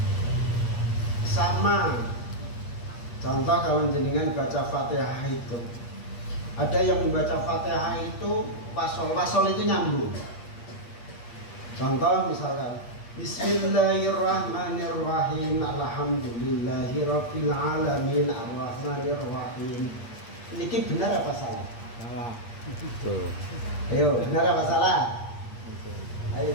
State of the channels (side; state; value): right; late; 8.4 ms